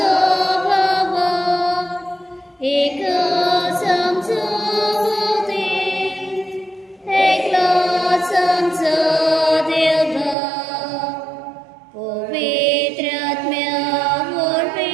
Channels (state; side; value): drops out; left; at 10.4 s